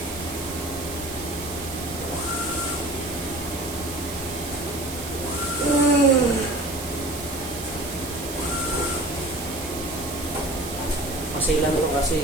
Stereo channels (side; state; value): right; noise; hiss, 9 dB below the sound